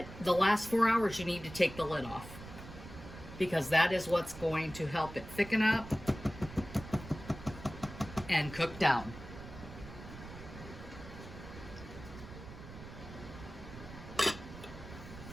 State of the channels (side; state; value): right; noise; rumble, 14 dB below the sound